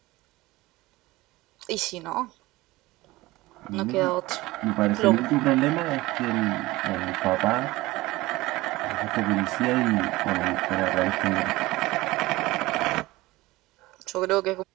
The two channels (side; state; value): left; quieter; 19.4 dB